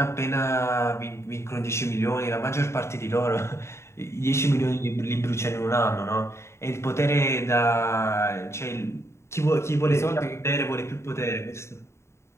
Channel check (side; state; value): right; late; 0.13 ms